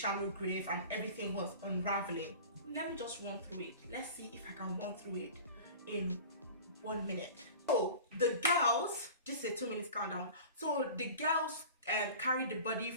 grave and everything was unraveling. Let me just run through it. Let's see if I can run through it in 1 minute. So the girls, this is a 2 minutes countdown. So the girls carried the body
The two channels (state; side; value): inverted; both; correlation -0.38